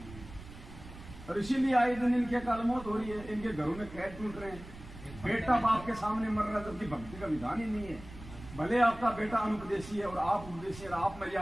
और इसीलिए आए दिन इनके अकाल मौत हो रही है, इनके घरों में कैद टूट रहे हैं। बेटा बाप के सामने मर रहा है, जबकि भक्ति का विधान ही नहीं है। भले आपका बेटा अनुपदेशी है और आप उपदेशी है, आप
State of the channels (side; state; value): right; noise; rumble, 15 dB below the sound